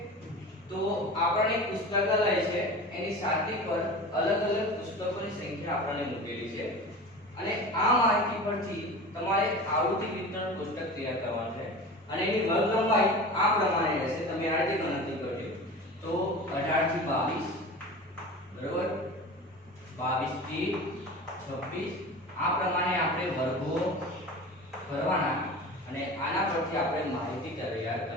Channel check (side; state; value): both; normal; correlation 0.34